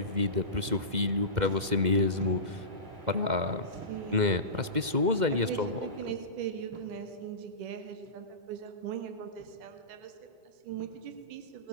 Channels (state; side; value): late; left; 2.1 ms